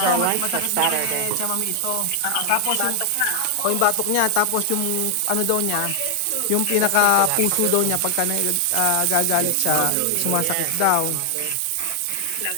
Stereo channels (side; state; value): both; different; correlation 0.00